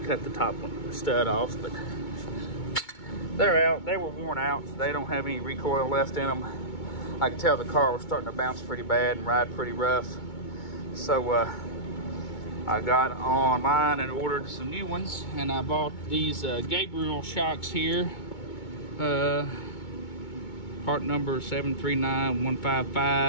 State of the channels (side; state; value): right; late; 2.2 ms